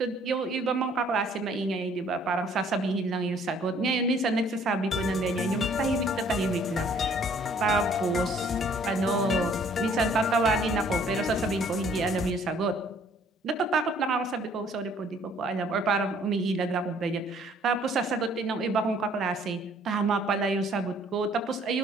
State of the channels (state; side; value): normal; both; correlation 0.59